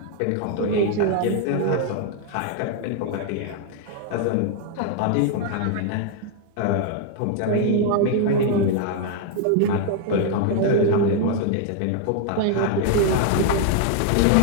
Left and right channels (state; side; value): different; both; correlation 0.00